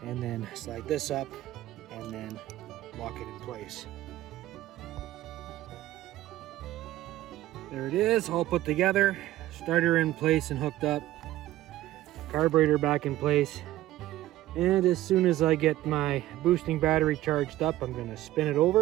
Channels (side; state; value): left; quieter; 15.2 dB